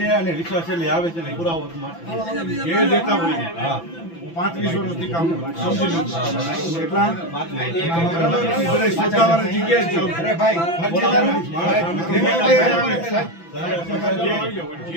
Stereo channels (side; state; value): right; late; 5.9 ms